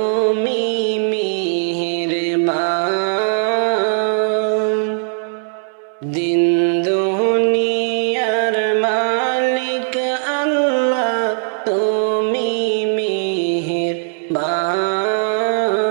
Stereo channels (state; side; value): silent; left; 63 dB below the other